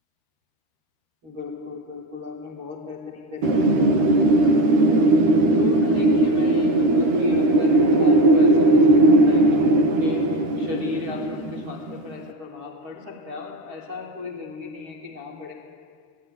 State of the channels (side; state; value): left; late; 13 ms